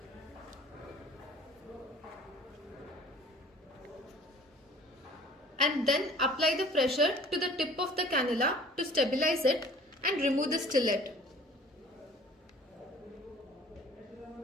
and then apply the pressure to the tip of the cannula to stabilize it and remove the stillet.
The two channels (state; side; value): normal; both; correlation 0.49